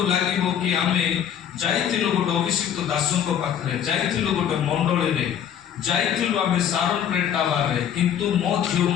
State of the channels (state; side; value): quieter; right; 9.2 dB